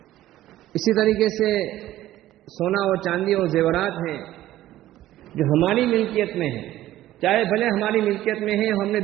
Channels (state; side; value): quieter; left; 14.4 dB